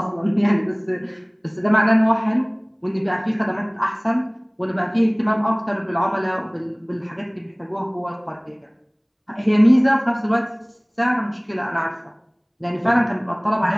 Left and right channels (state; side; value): identical; both; correlation 1.00